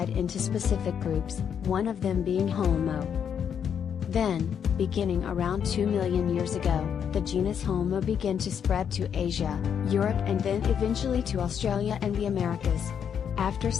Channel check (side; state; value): right; quieter; 8.0 dB